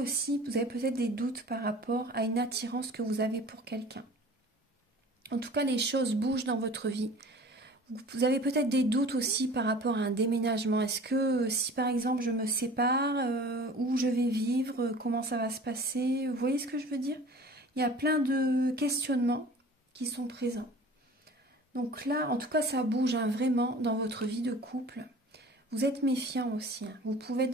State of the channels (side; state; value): both; normal; correlation 0.44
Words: vous avez peut-être des doutes par rapport à une attirance que vous avez pour quelqu'un. En tout cas, les choses bougent dans votre vie. Vous avez peut-être des doutes aussi par rapport à un déménagement. Est-ce que si par exemple je me sépare, où je vais vivre, comment ça va se passer? Vous voyez ce que je veux dire? Il y a plein de questionnements qui sont présents. Donc là, en tout cas, ça bouge vraiment dans votre vie de couple. Vous êtes méfiant aussi. Vous pouvez être